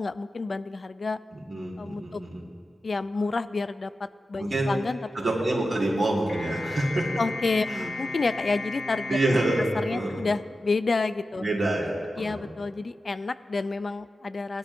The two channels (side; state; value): both; normal; correlation 0.92